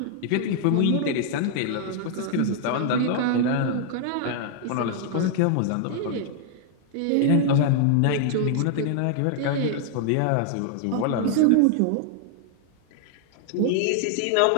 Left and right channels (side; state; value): both; different; correlation 0.00